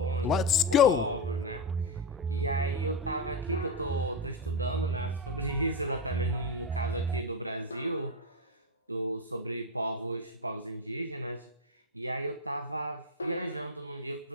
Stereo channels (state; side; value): normal; both; correlation 0.09